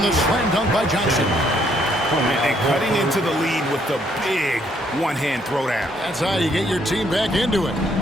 the slam dunk by Johnson. And cutting into the lead with the big one-hand throwdown. That's how you get your team back into it.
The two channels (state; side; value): normal; both; correlation 0.69